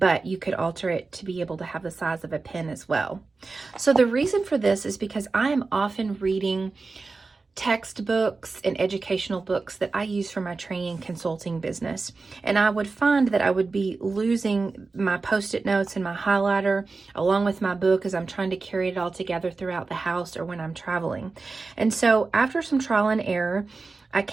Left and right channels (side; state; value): left; quieter; 4.0 dB